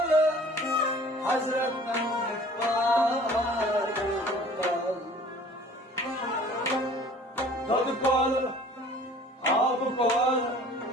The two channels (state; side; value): normal; both; correlation 0.49